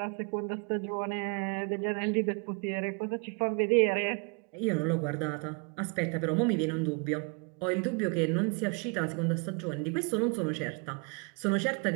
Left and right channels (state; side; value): quieter; left; 35.1 dB